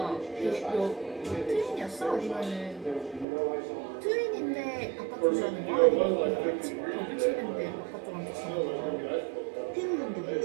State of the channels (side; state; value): left; drops out; at 3.2 s